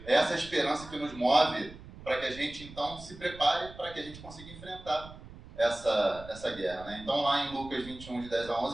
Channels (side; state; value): right; noise; rumble, 16 dB below the sound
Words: essa esperança que nos move para que a gente, então, se prepare para que a gente consiga enfrentar essa guerra, né? Então, lá em Lucas 21, de 10 a